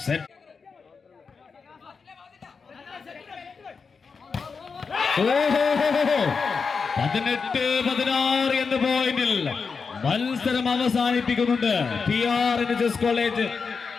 സെറ്റ്. 18-16 എന്ന പോയിന്റിൽ മത്സരം അവസാനിപ്പിക്കുന്നുണ്ട് PRNSS കോളേജ്.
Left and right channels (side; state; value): right; quieter; 5.2 dB